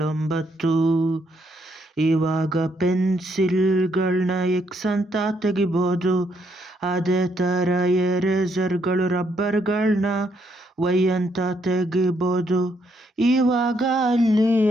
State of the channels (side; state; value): both; normal; correlation 0.74